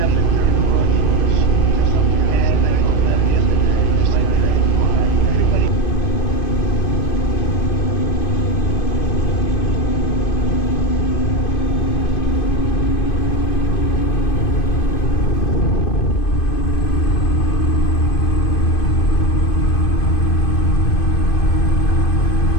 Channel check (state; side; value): late; right; 2.5 ms